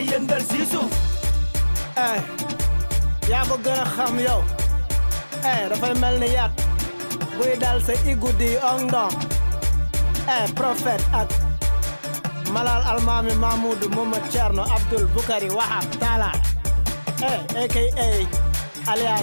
yëngal si suuf. yaa ko gën a xam yow. dafay mel ni yat buy dal sa igudi ong dong. Prophète ak Malal Almami Mahmoudou Momo Thierno Abdul Bukari Wahab Talla. aka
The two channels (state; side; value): inverted; both; correlation -1.00